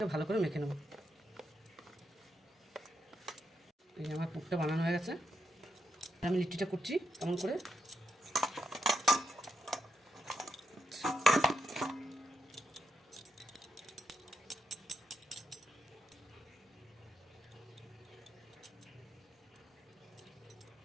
ভালো করে মেখে নেব। এই আমার পুরটা বানানো হয়ে গেছে। আমি লিট্টিটা করছি কেমন করে।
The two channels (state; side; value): normal; both; correlation 0.83